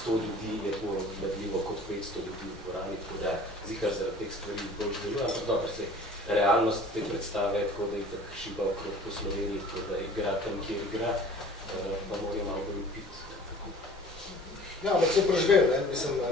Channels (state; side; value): normal; both; correlation 0.47